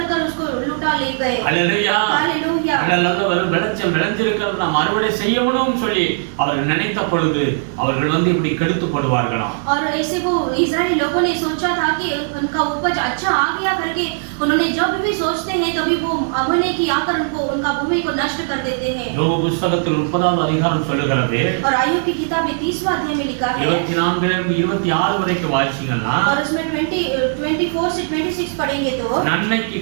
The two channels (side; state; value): left; silent; 67 dB below the other